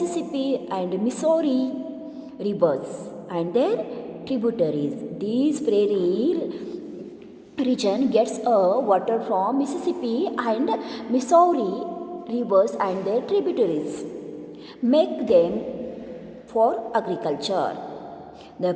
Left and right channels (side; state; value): both; identical; correlation 1.00